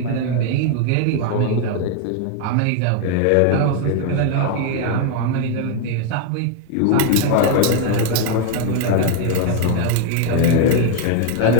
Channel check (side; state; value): both; different; correlation 0.01